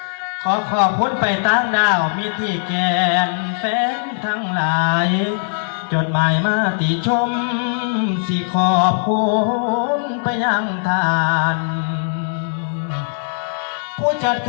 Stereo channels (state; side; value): silent; right; digital silence